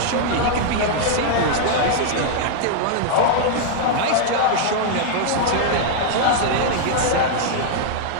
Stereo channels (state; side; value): different; both; correlation -0.01